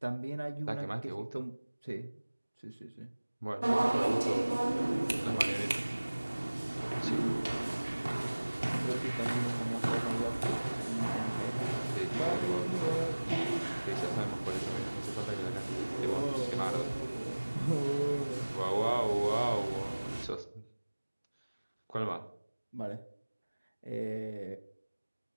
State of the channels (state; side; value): inverted; both; correlation -1.00